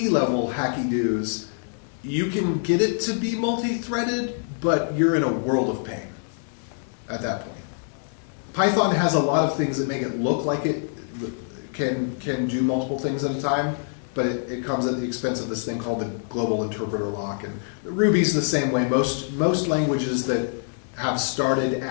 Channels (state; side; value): silent; right; digital silence